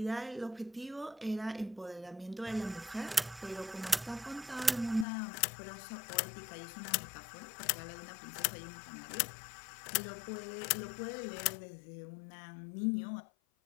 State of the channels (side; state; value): right; drops out; at 5.1 s